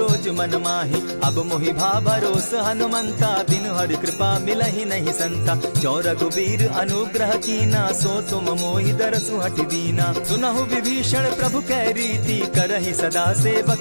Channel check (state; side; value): inverted; both; correlation -1.00